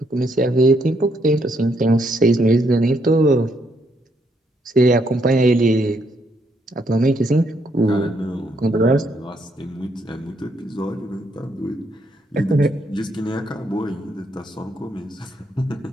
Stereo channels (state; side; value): normal; both; correlation 0.74